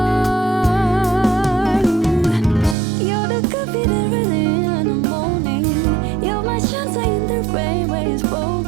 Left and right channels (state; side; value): drops out; left; at 2.8 s